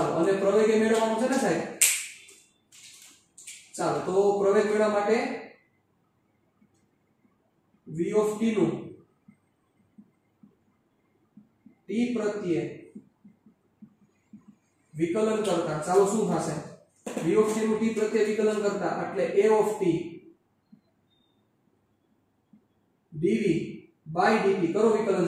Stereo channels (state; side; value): identical; both; correlation 1.00